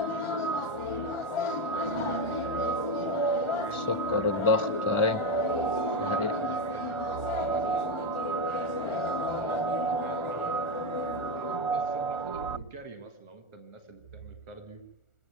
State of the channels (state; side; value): late; right; 1.4 ms